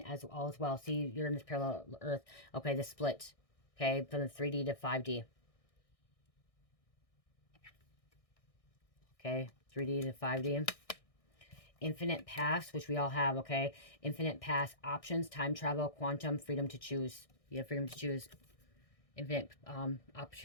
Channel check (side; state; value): right; late; 1.6 ms